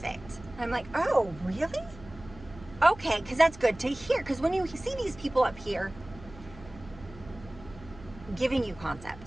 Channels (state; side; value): noise; right; hum, 18 dB below the sound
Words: And I'm like, oh, really? Okay, because that's good to hear. Because when you see these people up here giving you